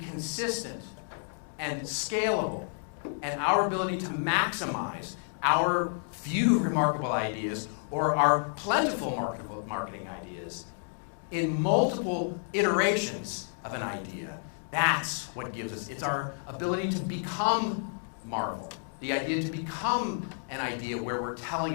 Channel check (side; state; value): right; silent; 58 dB below the other